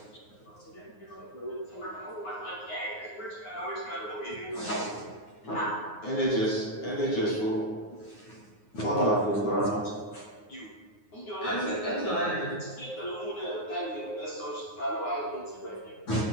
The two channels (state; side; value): late; right; 9.5 ms